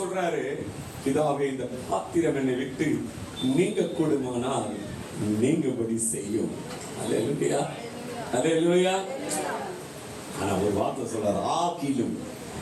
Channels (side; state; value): both; identical; correlation 1.00